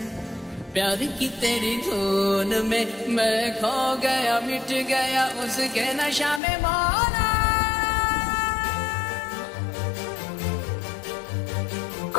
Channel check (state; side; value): drops out; right; at 6.4 s